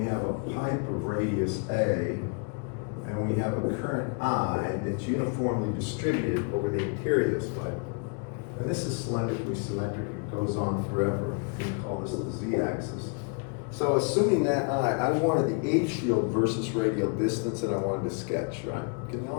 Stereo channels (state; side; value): quieter; right; 36.1 dB